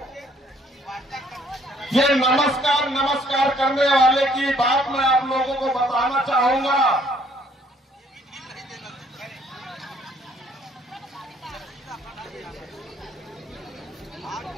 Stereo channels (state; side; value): normal; both; correlation 0.64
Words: ये नमस्कार नमस्कार करने वाले की बात मैं आप लोगों को बताना चाहूंगा।